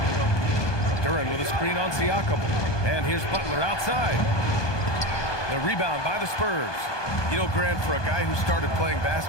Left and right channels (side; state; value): right; late; 1.2 ms